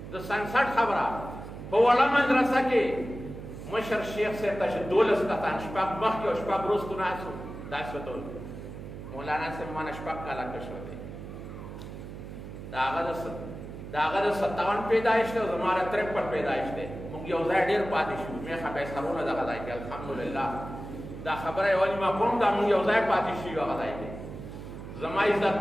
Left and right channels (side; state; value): right; noise; hum, 11 dB below the sound